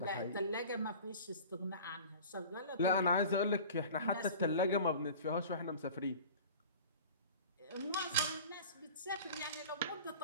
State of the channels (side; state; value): both; inverted; correlation -0.40